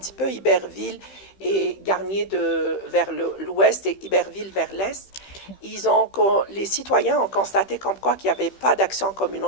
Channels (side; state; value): right; late; 15 ms